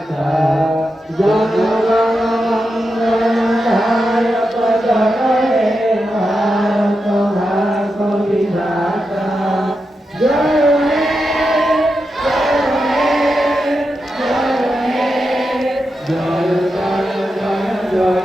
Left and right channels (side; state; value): both; normal; correlation 0.88